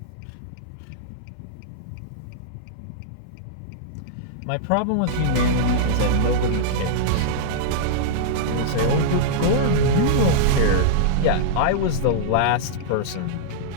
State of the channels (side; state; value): both; different; correlation -0.03